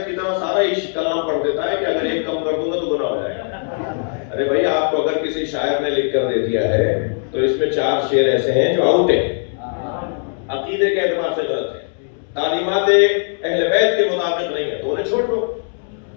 کی طرح سارا ہی کلام پڑھ دیتا ہے کہ اگر ایک کم کر دوں گا تو گناہ ہو جائے گا. ارے بھائی آپ کو اگر کسی شاعر نے لکھ کر دے دیا ہے تو اس میں 4 شعر ایسے ہیں جو آؤٹ ہیں، عقیدے کے اعتبار سے غلط ہیں، تعلیمات اہل بیت کے مطابق نہیں ہے، تو انہیں چھوڑ دو.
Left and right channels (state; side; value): silent; right; 60 dB below the other